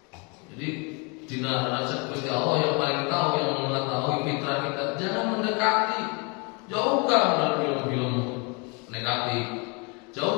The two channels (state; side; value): quieter; right; 31.0 dB